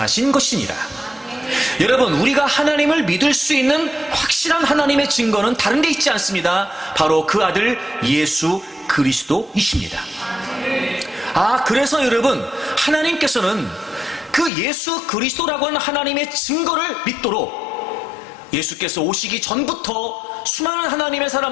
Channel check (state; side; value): drops out; right; at 14.5 s